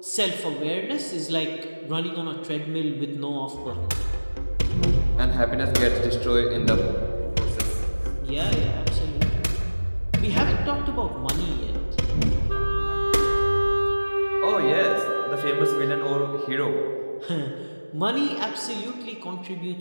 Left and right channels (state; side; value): inverted; both; correlation -1.00